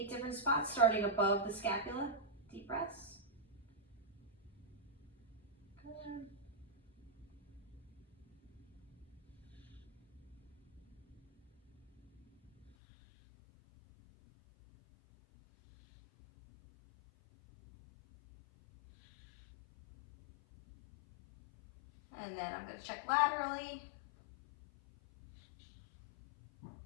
different spots starting above the scapula. Deep breaths. Good. And then I'm going to check laterally.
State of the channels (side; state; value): right; drops out; at 12.7 s